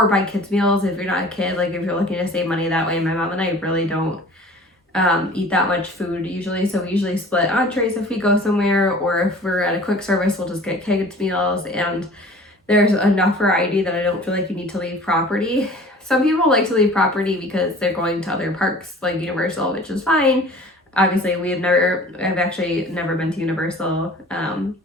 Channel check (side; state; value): both; normal; correlation 0.45